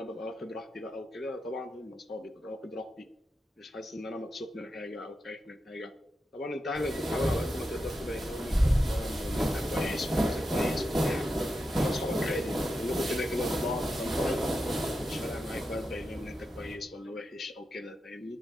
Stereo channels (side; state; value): both; normal; correlation 0.88